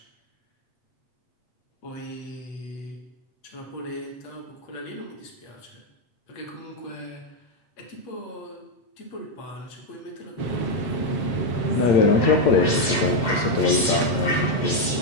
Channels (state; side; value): late; right; 8.1 ms